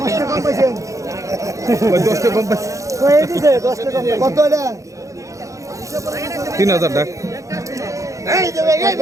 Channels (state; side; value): late; left; 0.15 ms